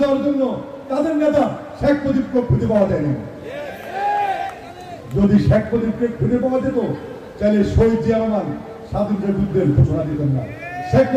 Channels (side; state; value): both; identical; correlation 1.00